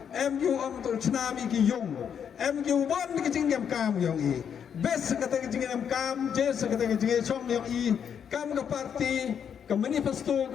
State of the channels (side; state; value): right; quieter; 7.9 dB